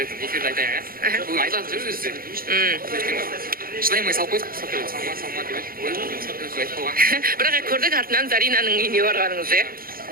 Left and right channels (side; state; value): left; late; 0.42 ms